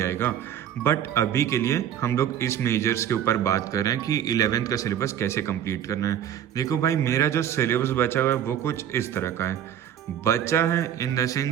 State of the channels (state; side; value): quieter; left; 10.1 dB